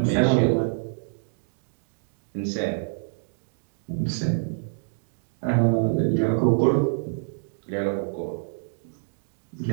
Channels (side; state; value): left; silent; digital silence